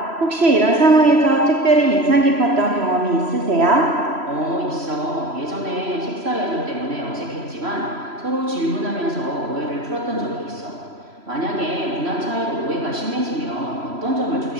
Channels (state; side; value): late; left; 3.0 ms